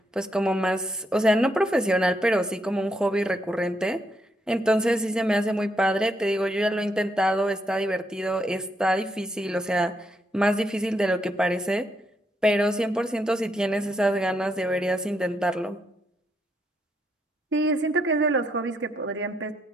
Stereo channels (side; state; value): both; normal; correlation 0.77